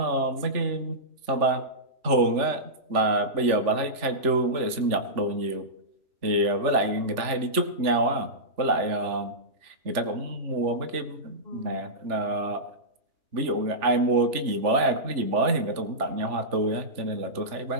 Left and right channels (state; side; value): late; left; 3.4 ms